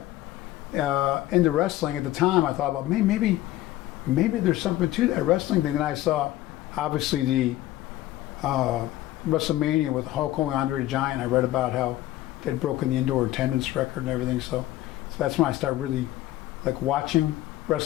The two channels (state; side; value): quieter; right; 15.4 dB